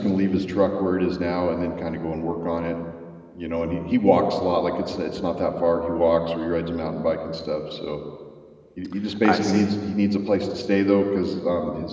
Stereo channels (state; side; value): identical; both; correlation 1.00